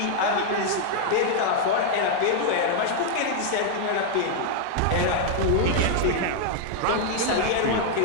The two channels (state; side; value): different; both; correlation 0.00